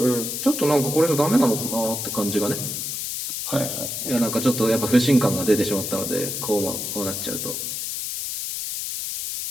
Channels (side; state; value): left; noise; hiss, 4 dB below the sound